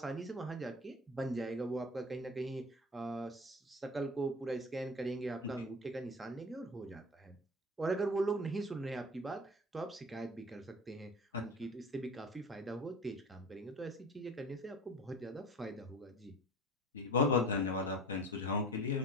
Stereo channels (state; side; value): normal; both; correlation 0.38